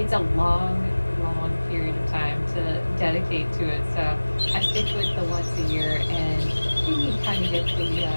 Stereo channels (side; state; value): both; inverted; correlation -1.00